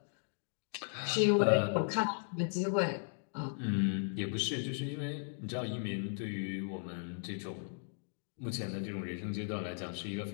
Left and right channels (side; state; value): right; silent; digital silence